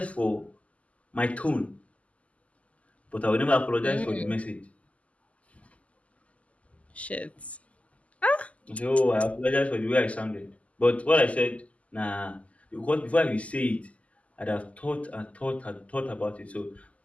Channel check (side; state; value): right; late; 0.068 ms